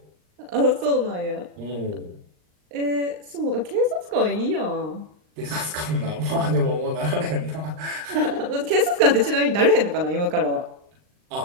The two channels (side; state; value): left; late; 39 ms